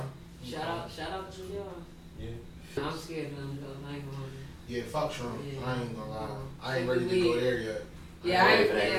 shout out to y'all. Yeah. I'm scared of them though. I ain't gonna. Yeah, fuck shrooms. Yeah. I ain't gonna lie. I ain't ready to go there yet. Yeah,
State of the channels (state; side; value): identical; both; correlation 1.00